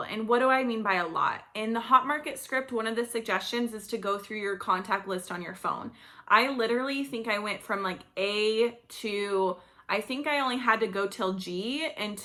And what do I mean by a lot? In the Hot Market script, one of the suggestions is to go through your contact list on your phone. I literally think I went from like A to, I think I only had to go till G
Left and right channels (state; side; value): identical; both; correlation 1.00